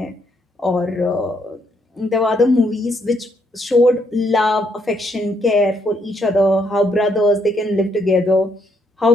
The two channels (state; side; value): normal; both; correlation 0.73